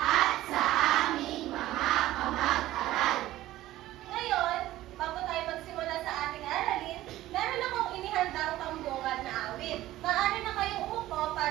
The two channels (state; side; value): quieter; left; 15.4 dB